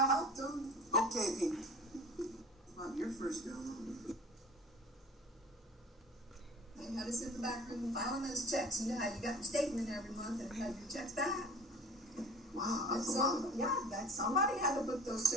helped them. Okay, Pete. About your first job. They had us in the back room filing those checks. You know how you got your statement every month and you had your checks back. Wow, And that's a lot. somebody had to put those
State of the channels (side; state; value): both; normal; correlation 0.42